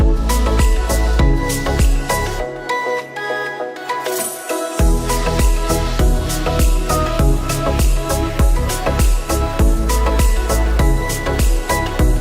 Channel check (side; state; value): both; identical; correlation 1.00